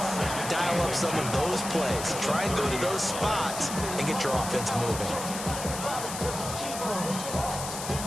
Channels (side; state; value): left; noise; hiss, 7 dB below the sound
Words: Dial up some of those plays. Try and go to those spots and get your offense moving.